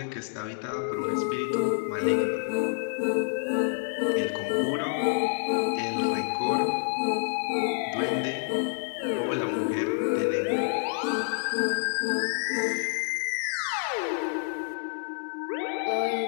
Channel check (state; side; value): silent; right; digital silence